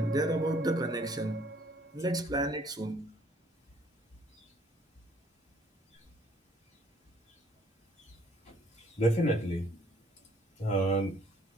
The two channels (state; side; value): normal; both; correlation 0.61